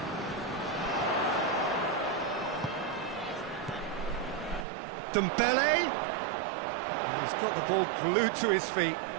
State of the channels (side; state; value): left; drops out; at 4.7 s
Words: Dembele. He's got the ball glued to his feet.